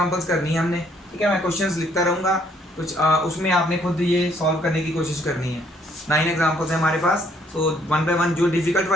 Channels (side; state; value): both; normal; correlation 0.66